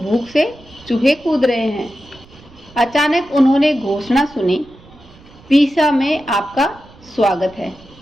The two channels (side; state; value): right; noise; rumble, 24 dB below the sound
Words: से चूहे कूद रहे हैं। अचानक उन्होंने घोषणा सुनी, पीसा में आपका स्वागत है।